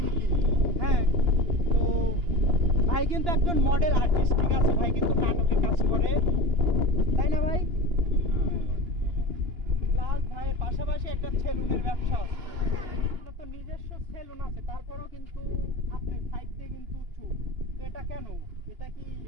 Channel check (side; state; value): left; late; 2.9 ms